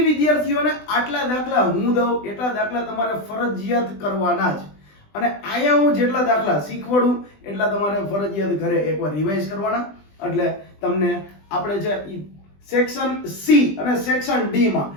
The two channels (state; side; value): late; right; 20 ms